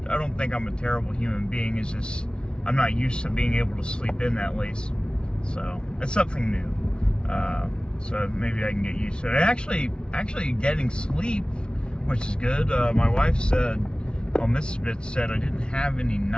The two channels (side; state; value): right; late; 0.055 ms